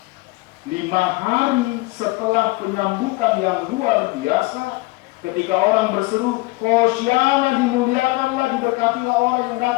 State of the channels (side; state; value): right; quieter; 22.9 dB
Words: 5 hari setelah penyambutan yang luar biasa, Ketika orang berseru, Hosiana, dimuliakanlah, diberkatilah orang yang